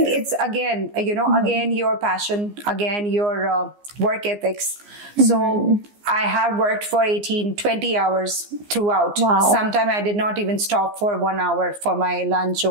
it's again, you know, again your passion, again your work ethics. So I have worked for 18-20 hours throughout. Sometimes I did not even stop for 1 hour for my lunch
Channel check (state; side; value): late; left; 15 ms